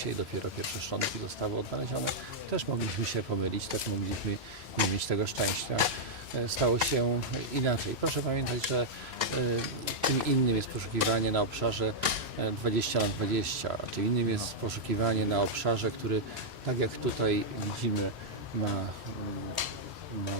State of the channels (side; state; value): both; normal; correlation -0.06